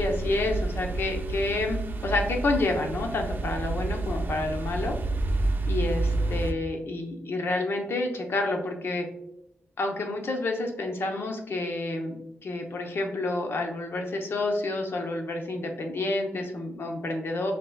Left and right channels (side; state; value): both; normal; correlation 0.78